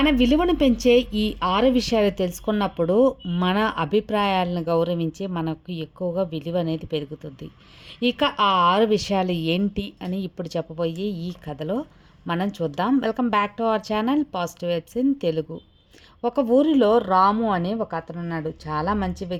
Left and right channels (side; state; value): both; identical; correlation 1.00